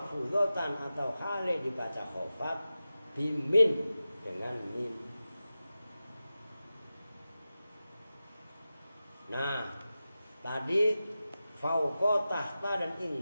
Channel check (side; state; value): both; inverted; correlation -0.94